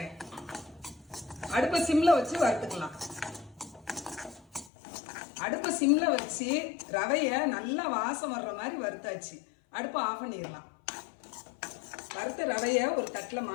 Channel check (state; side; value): drops out; right; at 4.7 s